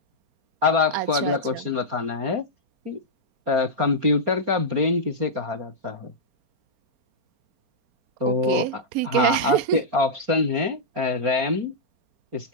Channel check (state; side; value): late; left; 4.3 ms